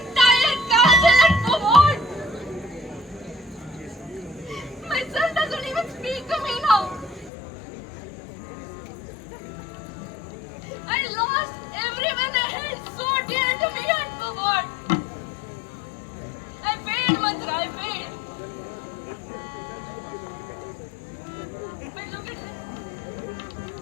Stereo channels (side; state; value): right; drops out; at 7.3 s